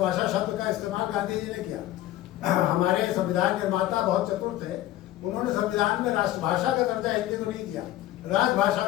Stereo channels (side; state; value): right; quieter; 14.4 dB